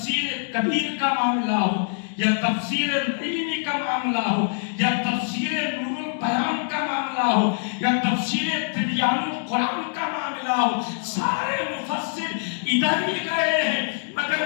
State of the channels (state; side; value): silent; right; digital silence